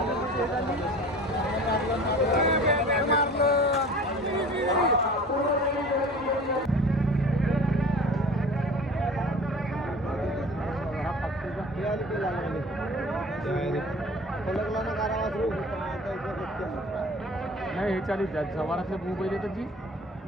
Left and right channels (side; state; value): both; normal; correlation 0.42